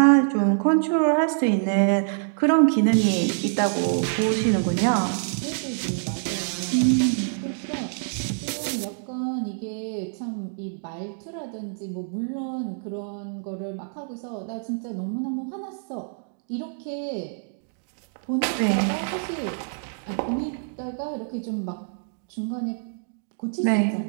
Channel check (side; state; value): left; silent; digital silence